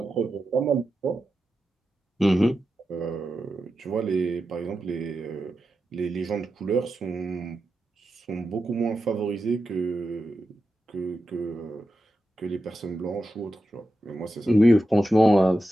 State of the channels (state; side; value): normal; both; correlation 0.90